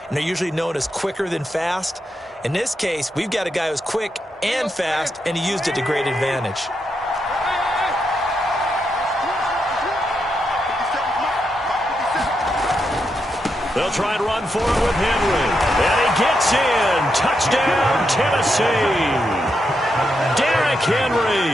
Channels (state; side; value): normal; both; correlation 0.83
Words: and they're usually known as quicker than fast. In this case, we've got a guy who's quick and fast, and he used it to great advantage. They'll try and run for it with Henry. And he gets in. Touchdown, Tennessee. Derrick